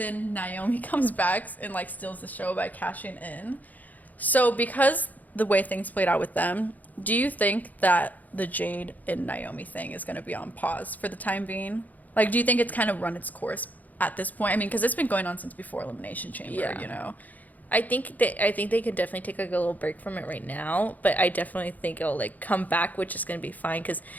Naomi comes back and like steals the show by cashing in. So because the way things played out with them, do you think that the Jade and Naomi thing is going to be on pause for the time being? Like, do you think it's kind of run its course at this point? I mean, because it's been going on since before Elimination Chamber, you know? I think they could definitely take like a little break from it right now, but I definitely think it'll like come back, which is going to be fine because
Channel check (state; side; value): late; right; 0.080 ms